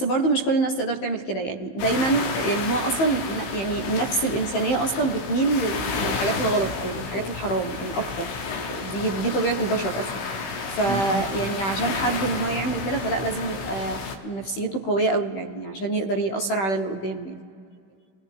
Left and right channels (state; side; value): late; right; 15 ms